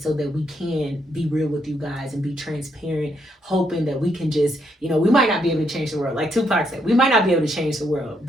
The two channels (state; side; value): normal; both; correlation 0.76